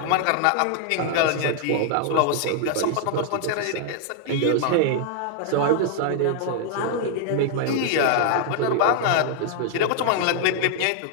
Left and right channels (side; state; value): both; different; correlation 0.00